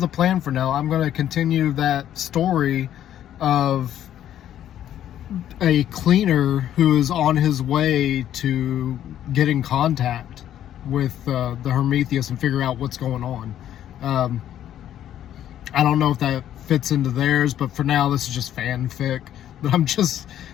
the plan for now. I'm going to continue that story of a cleaner who is on his way to get in contact with the Hermethious and figure out what's going on. I don't know if that fits into theirs, but for now this is just fanfic that I'm just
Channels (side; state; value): right; quieter; 11.1 dB